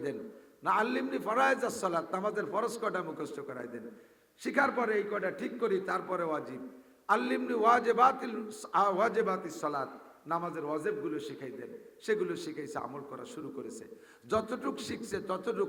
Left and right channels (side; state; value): both; identical; correlation 1.00